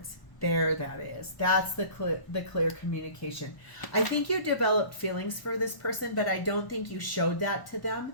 There that is. That's the clear communication. I think you developed feelings for this person, but I don't think you showed that to them.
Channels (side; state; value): right; late; 1.0 ms